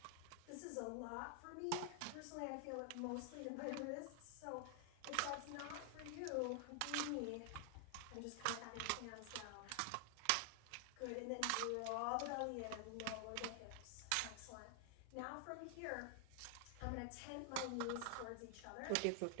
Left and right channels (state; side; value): different; both; correlation 0.00